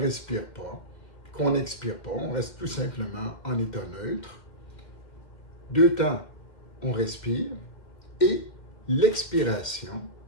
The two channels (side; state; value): right; late; 2.1 ms